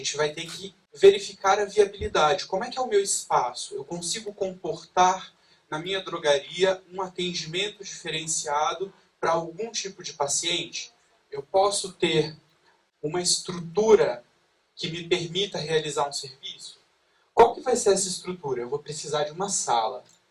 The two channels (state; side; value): identical; both; correlation 1.00